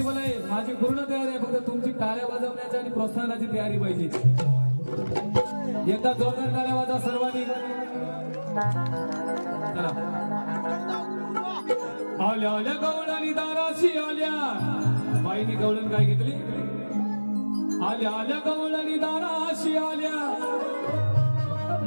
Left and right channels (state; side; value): inverted; both; correlation -1.00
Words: आहे माझी पूर्ण तयारी आहे फक्त तुमची टाळ्या वाजवण्याची आणि प्रोत्साहनाची तयारी पाहिजे एकदा जोरदार टाळ्या वाजवा सर्वांनी चला आल्या आल्या गवळणी दाराशी आल्या बाईनी गवळण काय घेतली आल्या आल्या गवळणी दाराशी आल्या